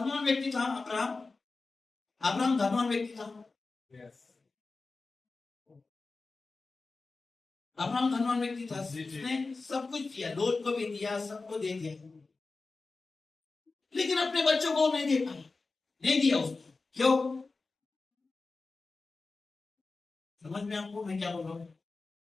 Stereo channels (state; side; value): quieter; right; 3.8 dB